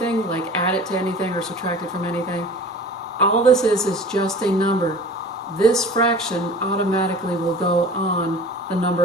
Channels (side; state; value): both; normal; correlation 0.42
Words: like add it to anything or subtract it from anything. All this is just a number. This fraction automatically will go on the